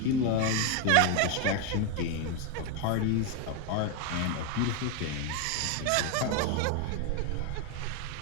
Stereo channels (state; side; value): different; both; correlation 0.01